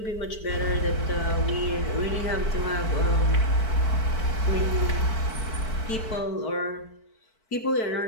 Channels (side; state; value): right; late; 4.5 ms